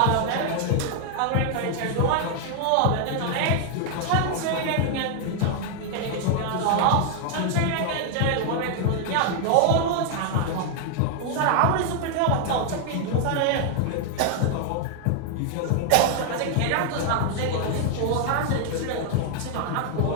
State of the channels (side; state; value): both; different; correlation 0.00